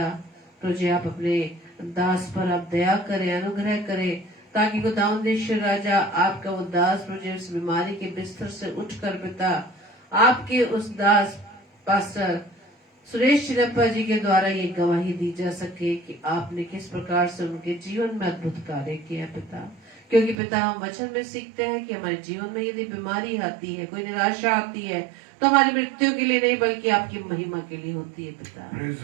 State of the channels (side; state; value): left; drops out; at 20.4 s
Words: प्रभु जी आप अपने दास पर आप दया करें, अनुग्रह करें, ताकि खुदावंद यीशु राजा आपका वो दास प्रभु जी उस बीमारी के बिस्तर से उठकर पिता आपके उस दास पास्टर सुरेश चिनप्पा जी के द्वारा ये गवाही दी जा सके कि आपने किस प्रकार से उनके जीवन में अद्भुत कार्य किया पिता। क्योंकि पिता हम वचन में सीखते हैं कि हमारे जीवन में यदि बीमारी आती है, कोई निराशा आती है, तो हमारी मृत्यु के लिए नहीं बल्कि आपकी महिमा के लिए होती है पिता।